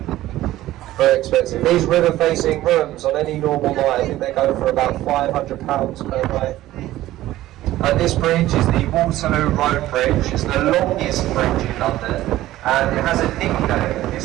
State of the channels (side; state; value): left; quieter; 15.1 dB